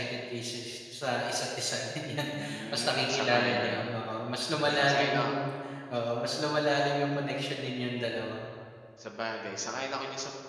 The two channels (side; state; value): both; identical; correlation 1.00